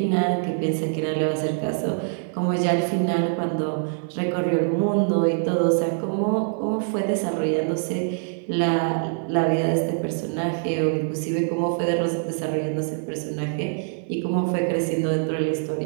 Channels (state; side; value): silent; left; digital silence